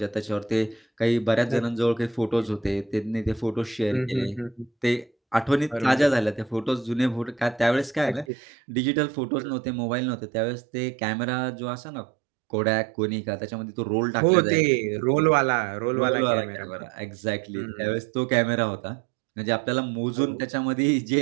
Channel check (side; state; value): left; drops out; at 8.2 s